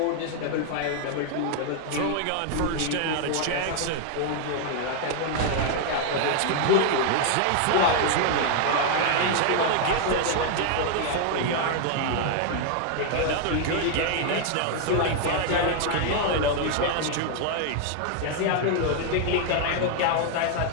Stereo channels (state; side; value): different; both; correlation 0.00